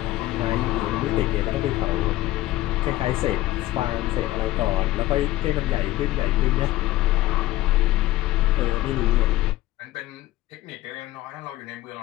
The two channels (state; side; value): quieter; right; 16.2 dB